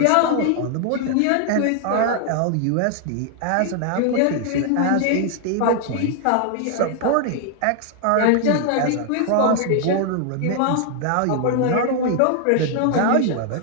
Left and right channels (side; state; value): both; different; correlation 0.00